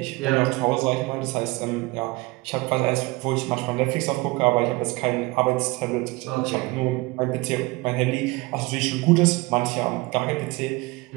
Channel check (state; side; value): quieter; left; 23.5 dB